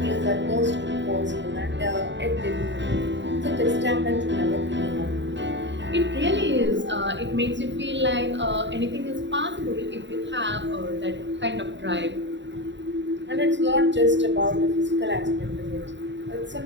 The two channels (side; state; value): left; late; 0.52 ms